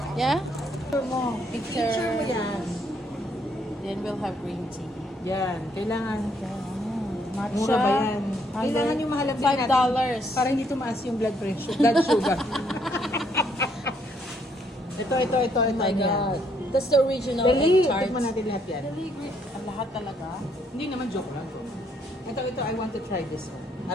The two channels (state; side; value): normal; both; correlation 0.70